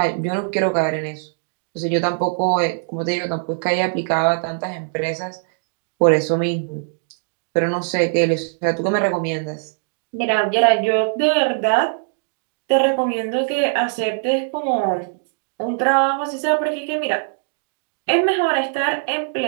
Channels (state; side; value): silent; left; digital silence